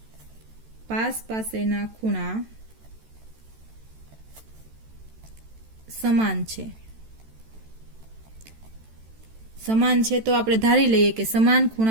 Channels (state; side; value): late; left; 14 ms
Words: પાસેના ખૂણા સમાન છે. સમાન છે તો આપણે ધારી લઈએ કે સમાન